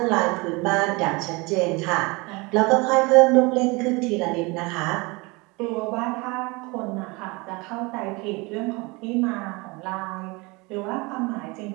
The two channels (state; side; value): quieter; left; 25.9 dB